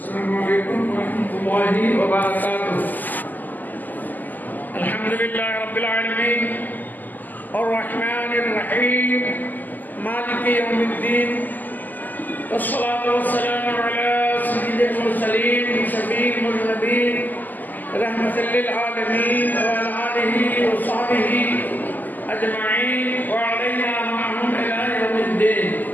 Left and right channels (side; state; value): right; late; 0.085 ms